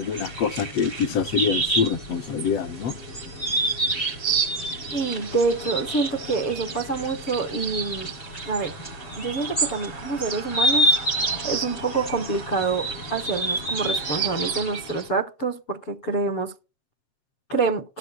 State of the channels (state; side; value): late; right; 7.6 ms